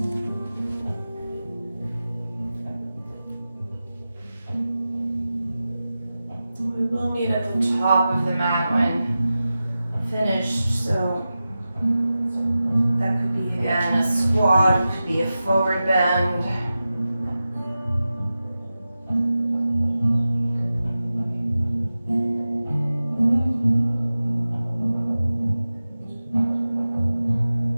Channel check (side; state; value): both; inverted; correlation -0.94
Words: We will meet at the top of the mat when finished, so that could be again a squat, could be a forward bend.